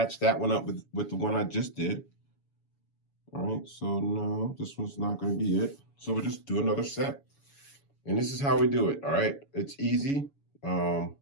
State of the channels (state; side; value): late; right; 7.1 ms